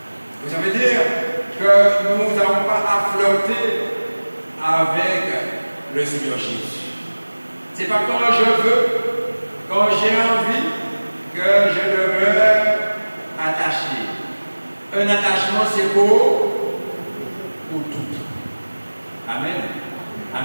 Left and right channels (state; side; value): inverted; both; correlation -1.00